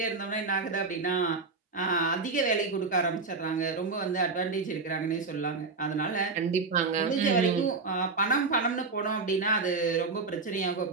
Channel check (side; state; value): left; quieter; 4.2 dB